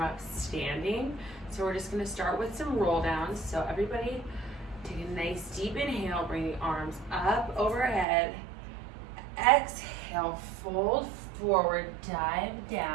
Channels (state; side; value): drops out; left; at 8.1 s